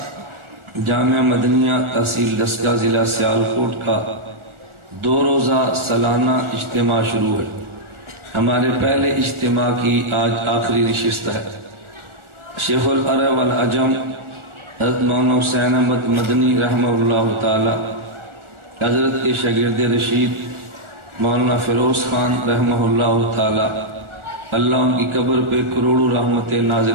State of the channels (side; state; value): left; late; 1.4 ms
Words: جامعہ مدنیہ تحصیل دسکا ضلع سیالکوٹ کا 2 روزہ سالانہ اجتماع شروع ہے ہمارے پہلے اجتماع کی آج آخری نشست ہے شیخ العرب والعجم حضرت مولانا حسین احمد مدنی رحمہ اللہ تعالی حضرت کے شاگرد رشید مولانا فیروز خان رحمہ اللہ تعالی اللہ ان کی قبر پہ کروڑوں رحمتیں